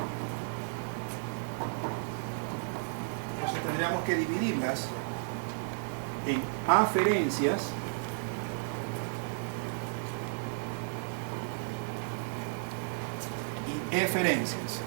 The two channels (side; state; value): left; silent; digital silence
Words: Entonces tendríamos que dividirlas en aferencias y eferencias.